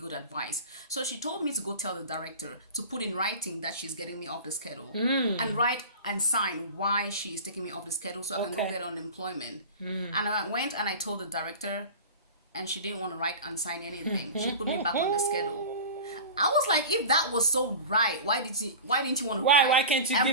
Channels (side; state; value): both; inverted; correlation -0.33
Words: advice. So she told me to go tell the director to put in writing that she's getting me off the schedule, and write and sign why she's taking me off the schedule so I can go Okay. get unemployment. And I went and I told the director, and she didn't want to write and sign anything. She put me back on the schedule. I was like, if that was so right, why didn't you want to write? Why can't you and